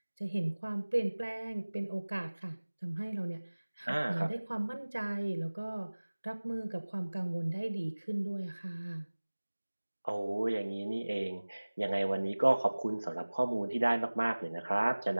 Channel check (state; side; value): inverted; both; correlation -1.00